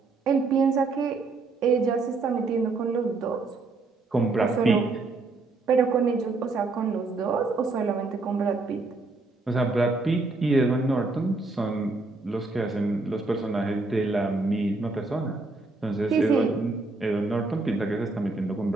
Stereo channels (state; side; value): quieter; left; 3.6 dB